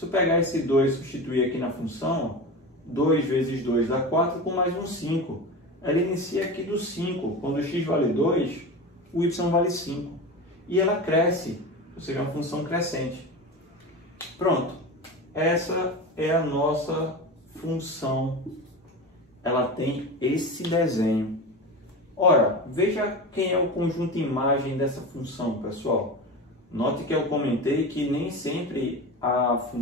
eu pegar esse 2 e substituir aqui na função, 2 vezes 2 dá 4 com mais um 5. Ela inicia aqui do 5. Quando o x vale 2, o y vale 5. E ela cresce, ou seja, é uma função crescente. Pronto. Essa é a nossa função. Ela tem esse desenho. Ora, veja quem é o conjunto imagem dessa função, pessoal. Note que eu comentei que nem sempre a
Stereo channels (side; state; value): both; normal; correlation 0.27